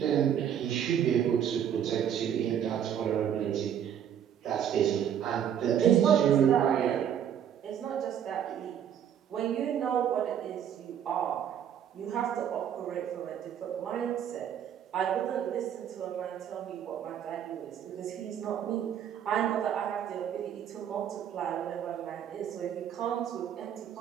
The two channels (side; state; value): left; quieter; 9.3 dB